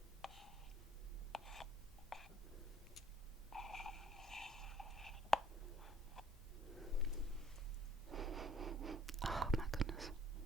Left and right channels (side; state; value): both; normal; correlation 0.58